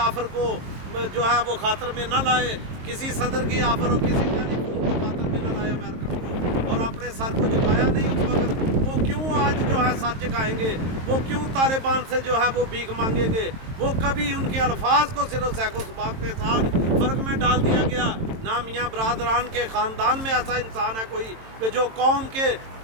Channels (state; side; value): late; left; 22 ms